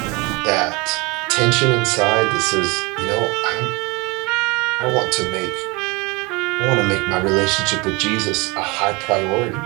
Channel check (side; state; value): left; quieter; 25.5 dB